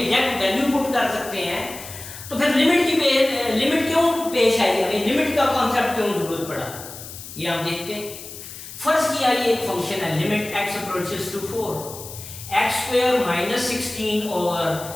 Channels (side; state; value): left; noise; hiss, 13 dB below the sound